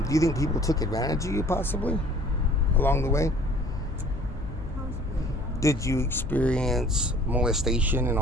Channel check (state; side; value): noise; left; hum, 10 dB below the sound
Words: Do you think people took advantage of you, possibly, along the way? Possibly, yeah. Did you experience molestation and